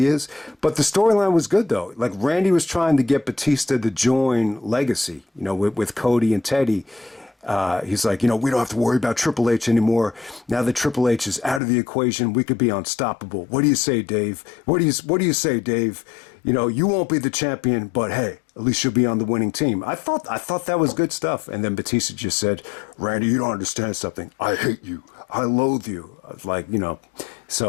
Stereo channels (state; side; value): drops out; right; at 11.6 s